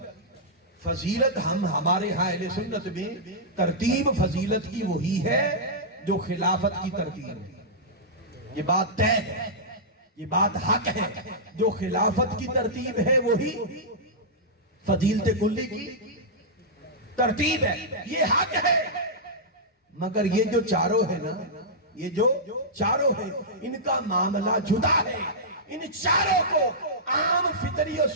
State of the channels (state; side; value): normal; both; correlation -0.12